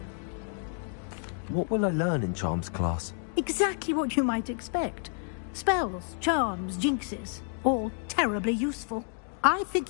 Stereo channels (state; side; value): silent; right; 58 dB below the other